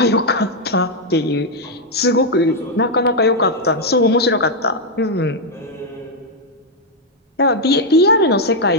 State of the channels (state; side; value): normal; both; correlation 0.00